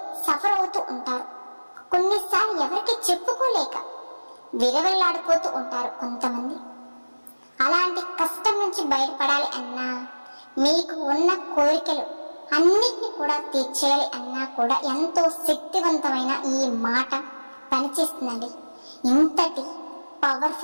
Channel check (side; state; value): both; inverted; correlation -1.00